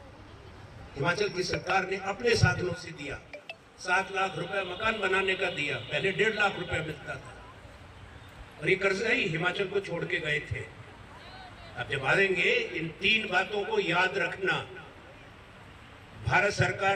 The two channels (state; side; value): identical; both; correlation 1.00